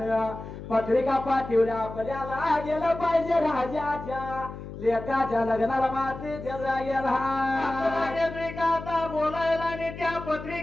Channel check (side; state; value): left; noise; hum, 11 dB below the sound